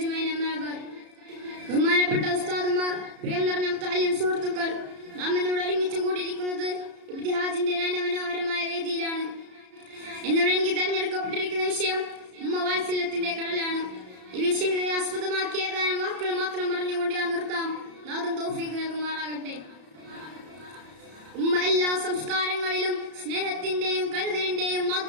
അമ്മാ ബഅദ്. ബഹുമാനപ്പെട്ട ഉസ്താദുമാർ, പ്രിയം നിറഞ്ഞ മുത്തഅല്ലിം സുഹൃത്തുക്കൾ, നാം ഇന്നിവിടെ ഒരുമിച്ച് കൂടിയിരിക്കുന്നത് ഇബ്തിഹാജിന്റെ നയനമനോഹരമായ വേദിയിലാണ്. ഇന്നിവിടെ എനിക്ക് തെരഞ്ഞെടുക്കപ്പെട്ടിരിക്കുന്ന വിഷയം ഉമ്മ വാത്സല്യത്തിന്റെ കടലാണ്. ഈ വിഷയത്തെ ആസ്പദമാക്കി ഏതാനും വാക്കുകൾ മാത്രം പറഞ്ഞുകൊണ്ട് ഞാൻ നിർത്താം. നാഥൻ തൗഫീഖ് നൽകുമാറാകട്ടെ. ഉമ്മ എല്ലാ സംസ്കാരങ്ങളിലും സ്നേഹത്തിന്റെയും കരുതലിന്റെയും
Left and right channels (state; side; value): late; left; 33 ms